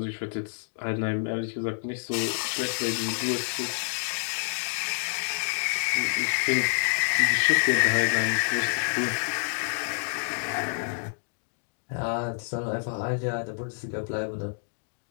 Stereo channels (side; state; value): right; silent; digital silence